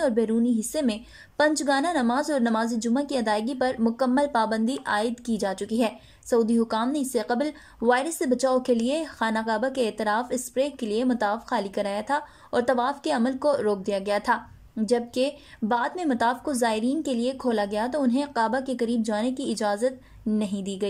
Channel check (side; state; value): both; identical; correlation 1.00